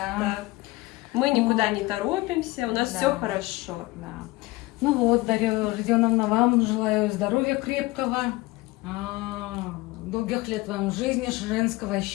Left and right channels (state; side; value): quieter; right; 20.7 dB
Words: да. Мы никуда не торопимся, у нас Да. все хорошо. Да. Ну вот, Дарья Родионовна, вам желаю здоровья крепкого, долгих лет вам жизни, женского